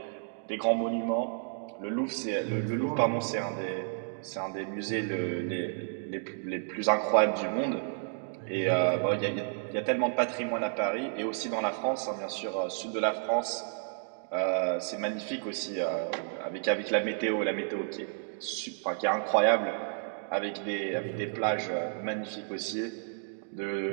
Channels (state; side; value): silent; left; digital silence